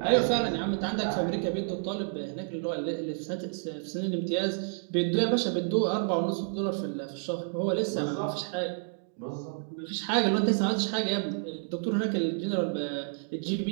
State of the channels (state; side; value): silent; left; digital silence